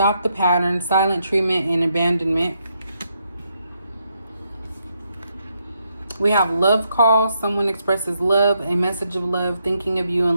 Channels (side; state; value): both; inverted; correlation -0.79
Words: the pattern, silent treatment, and abandonment. We have love call, someone expresses love, a message of love, thinking of you